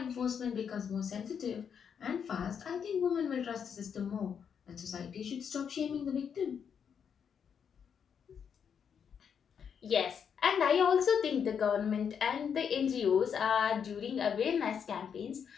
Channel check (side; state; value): right; quieter; 7.3 dB